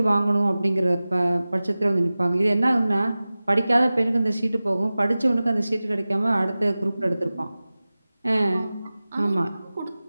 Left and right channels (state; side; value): inverted; both; correlation -0.97